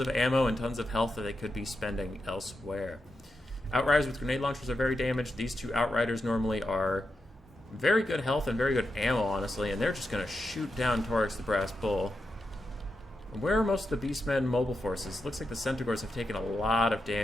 ammo and tons of health that they could be spending elsewhere. Outriders with grenade launchers are very damaged. These 2 Outriders normally are very good health and very good ammo, honestly, and they're just going to shoot down Taurus the Brass Bull. Where are most of the Beastmen mobile forces? Looks like the Centaurs have taken a lot of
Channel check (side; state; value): both; normal; correlation 0.87